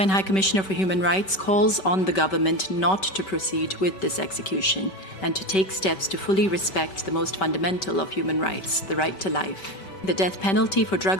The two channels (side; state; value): right; late; 5.2 ms